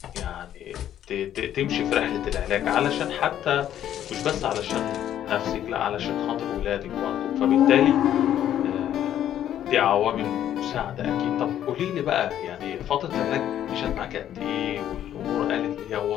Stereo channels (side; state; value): right; quieter; 11.0 dB